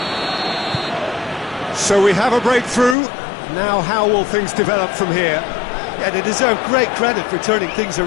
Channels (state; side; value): drops out; right; at 3.0 s